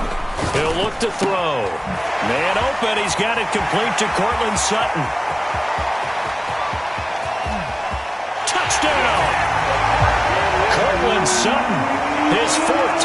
He'll look to throw. Man open. He's got it complete to Cortland Sutton. Touchdown! Cortland Sutton, his 4th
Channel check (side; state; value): both; identical; correlation 1.00